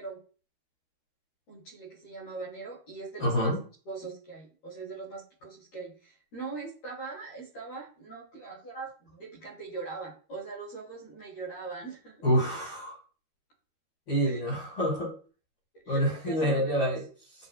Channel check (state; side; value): late; right; 13 ms